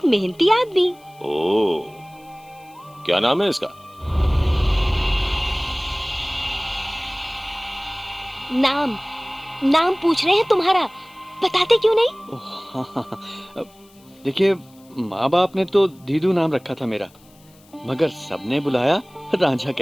मेहनती आदमी। ओ, क्या नाम है इसका? नाम पूछ रहे हैं तुम्हारा, बताते क्यों नहीं? देखिए, माँ बाप ने तो दीदू नाम रखा था मेरा, मगर सबने बुलाया रांझा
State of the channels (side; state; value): left; noise; hiss, 29 dB below the sound